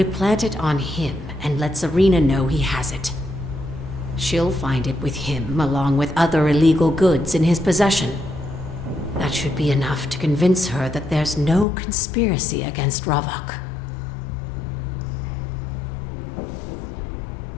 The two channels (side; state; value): right; drops out; at 11.7 s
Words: plant it on him and let Serena know he has it. She'll find it with him along with other illegal goods in his possession. That should be enough to convince her that there's no conspiracy against Ravok.